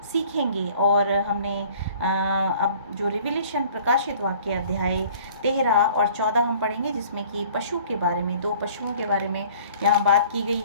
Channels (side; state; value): both; inverted; correlation -0.51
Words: सीखेंगे और हमने अब जो रिविलेशन प्रकाशित वाक्य अध्याय 13 और 14 हम पढ़ेंगे, जिसमें कि पशु के बारे में, दो पशुओं के बारे में यहाँ बात की गई